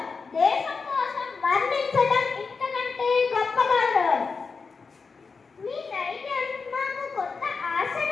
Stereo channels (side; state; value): right; quieter; 4.8 dB